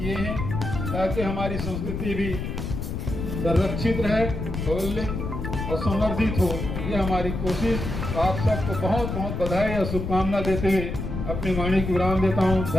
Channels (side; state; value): left; noise; rumble, 4 dB below the sound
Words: हैं ताकि हमारी संस्कृति भी संरक्षित रहे, और संवर्धित हो। ये हमारी कोशिश। आप सबको बहुत बहुत बधाई और शुभकामना देते हुए अपनी वाणी की विराम देता हूँ।